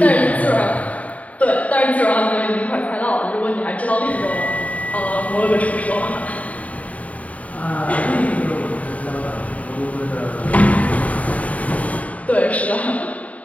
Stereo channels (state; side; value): late; right; 0.069 ms